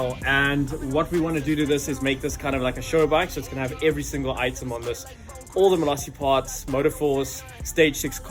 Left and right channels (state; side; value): identical; both; correlation 1.00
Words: And what we want to do to this is make this kind of like a show bike. So it's going to have every single item on this. All the malossi parts, motoforce, stage 6